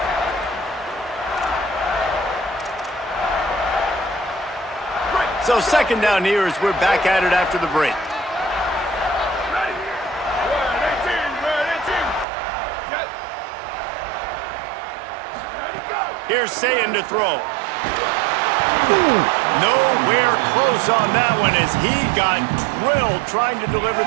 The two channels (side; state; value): left; drops out; at 12.2 s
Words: So second down here as we're back at it after the break. Here's Sayin to throw. Nowhere close on that one as he got drilled trying to deliver